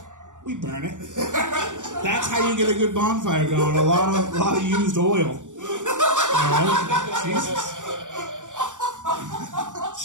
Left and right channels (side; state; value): left; late; 0.86 ms